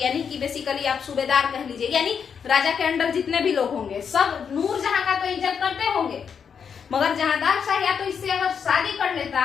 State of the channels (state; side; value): quieter; right; 6.9 dB